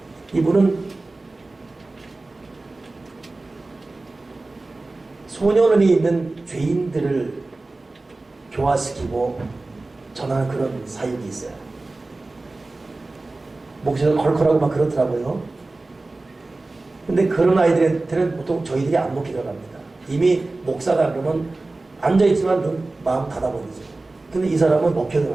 이분은 소년원에 있는 죄인들을 교화시키고 전하는 그런 사역이 있어요. 목소리가 컬컬하고 막 그렇더라고요. 근데 그런 아이들한테는 보통 저희들이 안 먹히더라고 합니다. 이미 목사다 그러면 앉아있지만 마음 닫아버리죠. 근데 이 사람은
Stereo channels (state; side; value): quieter; left; 3.2 dB